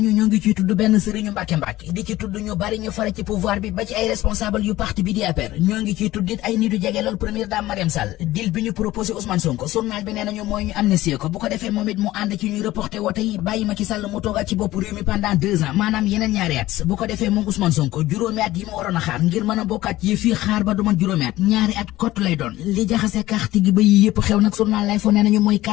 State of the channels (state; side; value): quieter; right; 16.4 dB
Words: ñoo ngi ciy tudd benn sëriñu Mbàkke di ci tudd ñu bari ñu fare ci pouvoir bi ba ci ay responsable yu parti bi di APR ñoo ngi ciy tudd it ay nit yu jege lool première dame Mariam Sall deal bi ñu proposé Ousmane Sonko journal bi nee nañu mooy ñu amnistie ko bu ko defee moom it mu ànd ci ñuy reporté wote yi bàyyi Macky Sall mu toogaat ci bopp réew mi pendant 2 ans maanaam yeneen ñaari at bu ko defee moom Ousmane Sonko juróomi at yi mu waroon a xaar ngir mën a bokkaat yi fii xaar ba du man juróomi at ñaari at kott lay doon li jaxase carte gi ba yi yëpp xew nag journal lay fo nee nañu mooy